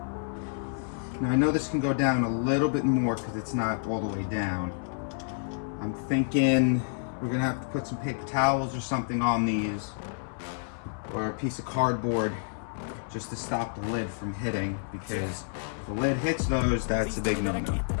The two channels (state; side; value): silent; right; 58 dB below the other